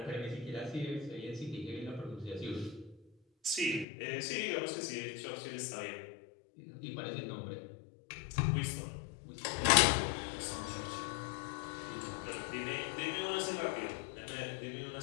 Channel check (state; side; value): drops out; right; at 3.9 s